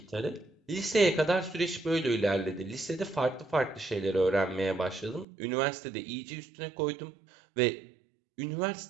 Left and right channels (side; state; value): left; drops out; at 5.2 s